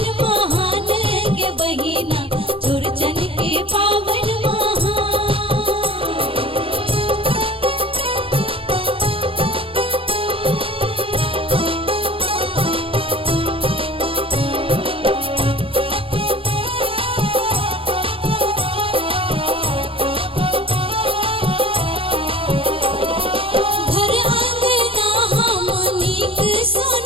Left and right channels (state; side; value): late; left; 0.26 ms